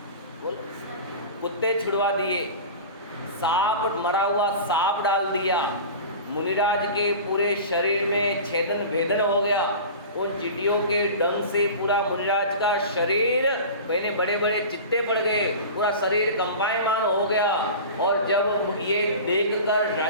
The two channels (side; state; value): both; inverted; correlation -0.34